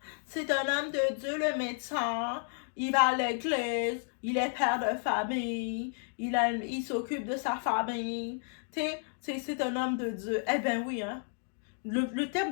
C'est un homme de Dieu, le médecin. Il va à l'église, il est père de famille, il s'occupe de sa famille. C'est un homme de Dieu. » Eh bien oui, hein? Le terme,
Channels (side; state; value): right; silent; 56 dB below the other